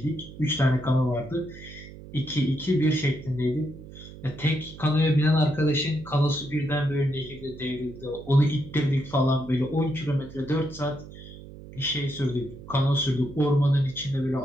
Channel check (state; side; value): noise; right; hum, 16 dB below the sound